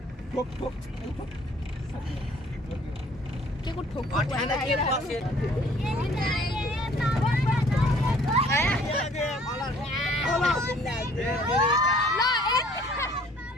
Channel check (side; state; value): both; normal; correlation 0.57